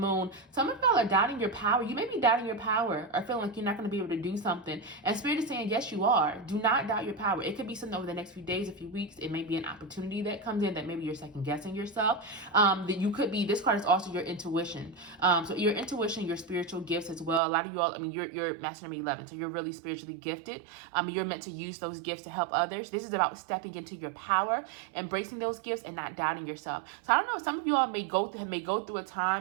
Some of y'all are doubting your power. You may be doubting your power or feeling like you're not going to be able to do something. And Spirit is saying, yes, you are. Do not doubt your power. It could be something over the next few days, a few weeks. It may be an opportunity that comes in that maybe you're second guessing yourself. That you could be. This card is also your intuition. So your intuition, your spiritual gifts as well. A lot of you all, you're Master number 11, so you're really spiritually gifted. You're meant to use those gifts to help others. This is about stepping into your power, embracing those gifts, and not doubting yourself. So I don't know. Some of you all may go through a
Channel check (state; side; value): drops out; left; at 17.4 s